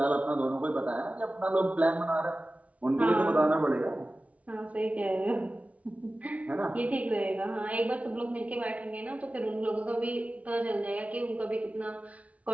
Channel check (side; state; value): left; late; 0.067 ms